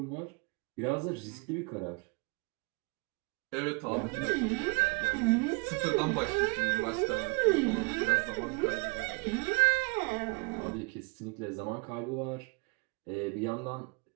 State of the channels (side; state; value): left; quieter; 32.7 dB